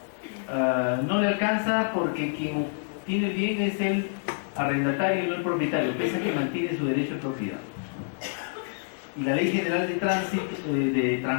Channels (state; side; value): silent; right; digital silence